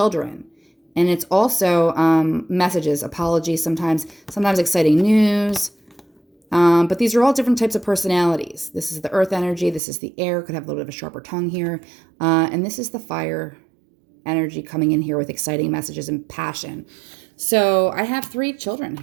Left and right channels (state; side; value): drops out; left; at 9.8 s